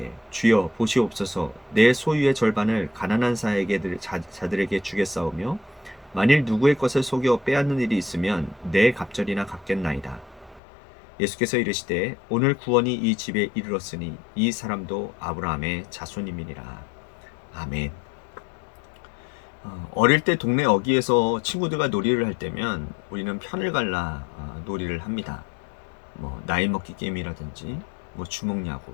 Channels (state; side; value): drops out; right; at 10.6 s